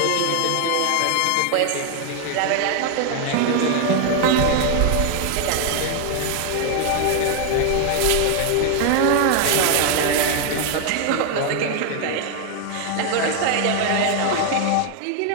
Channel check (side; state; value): both; different; correlation 0.00